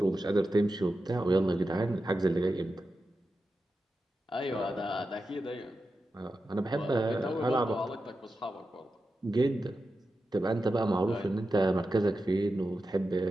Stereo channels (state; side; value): normal; both; correlation 0.91